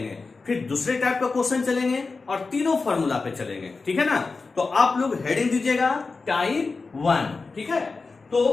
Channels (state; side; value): quieter; right; 4.1 dB